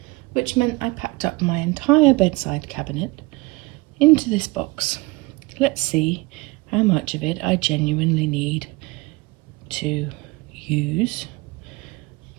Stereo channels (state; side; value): quieter; left; 23.2 dB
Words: which meant I packed up my entire bedside cabinet into this box. Let's see how much of it I genuinely need to use